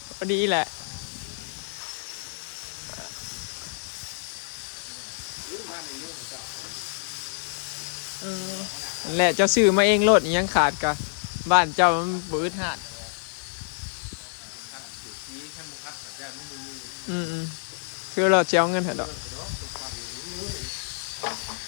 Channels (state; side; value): silent; right; 60 dB below the other